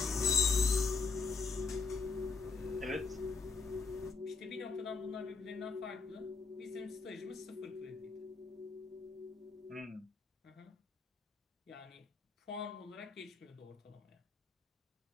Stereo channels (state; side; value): quieter; right; 4.5 dB